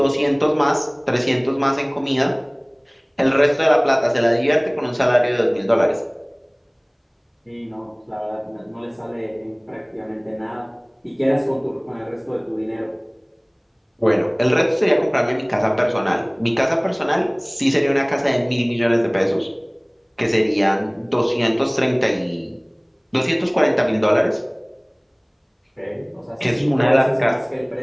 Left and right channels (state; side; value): identical; both; correlation 1.00